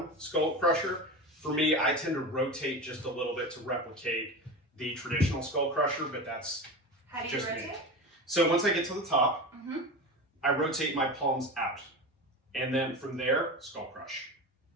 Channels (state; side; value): normal; both; correlation 0.26